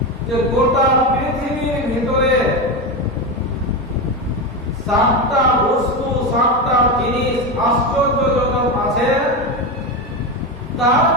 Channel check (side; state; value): both; normal; correlation 0.16